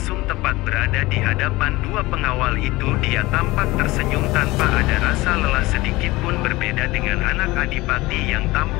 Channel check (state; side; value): quieter; right; 20.2 dB